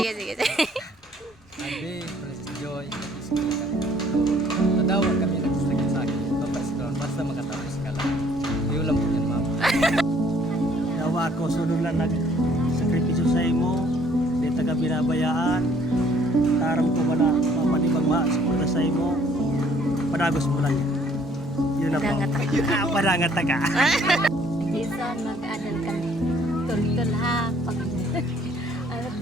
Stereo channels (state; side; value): normal; both; correlation 0.61